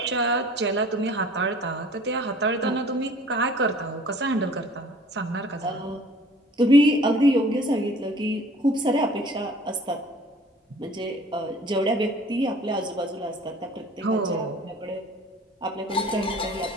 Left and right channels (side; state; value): both; normal; correlation 0.49